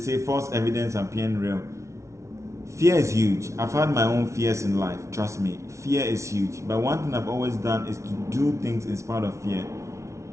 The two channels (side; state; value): left; late; 0.14 ms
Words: false evidence appearing real. Fear is huge. I've had my own fears in life, trust me. Fear is huge. But one thing I've always done is to do things in spite of fear.